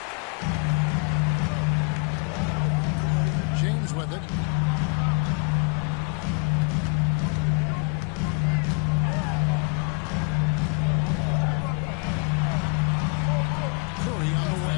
James with it. Curry on the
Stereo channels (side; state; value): right; quieter; 37.4 dB